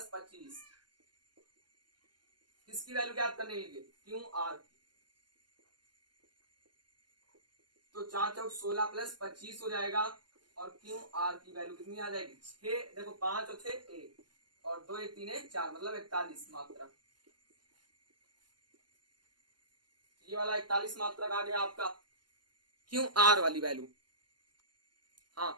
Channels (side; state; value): left; late; 0.71 ms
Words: 25। किसकी वैल्यू ज्ञात करने के लिए, QR। तो 4 चौक 16 प्लस 25 हो जाएगा, और QR की वैल्यू कितनी आ जाएगी, 6, देखो 5 और 6 1, और 2 1 3 1 4, मतलब 41 मात्रक। ये वाला 41 मात्रक आ गया आपका QR वाली वैल्यू। हाँ,